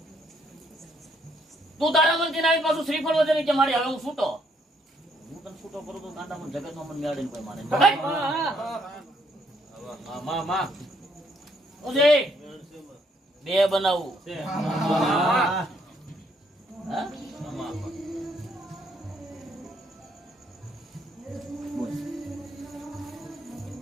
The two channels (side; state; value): both; normal; correlation 0.70